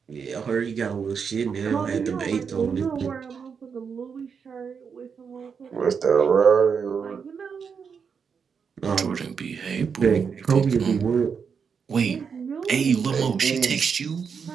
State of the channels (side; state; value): left; quieter; 6.3 dB